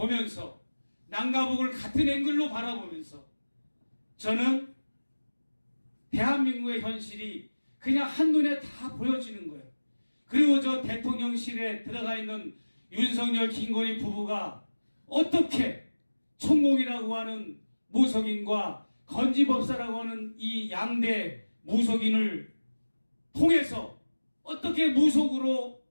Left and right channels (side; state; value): both; inverted; correlation -1.00